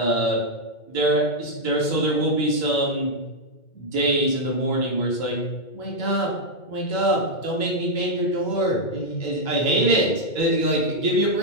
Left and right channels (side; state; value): right; late; 2.2 ms